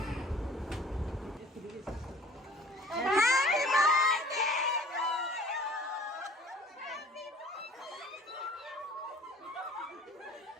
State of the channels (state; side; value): normal; both; correlation 0.49